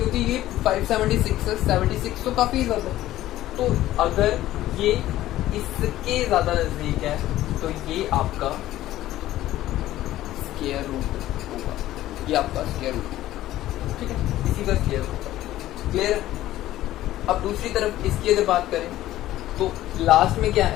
ये 576 है, 76 तो काफी ज्यादा है। तो अगर ये इसके ज्यादा नजदीक है तो ये आपका स्क्वायर रूट होगा, ये आपका स्क्वायर रूट, ठीक है, इसी का स्क्वायर होगा। क्लियर? अब दूसरी तरफ इसकी अगर बात करें तो लास्ट में क्या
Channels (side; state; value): right; quieter; 14.6 dB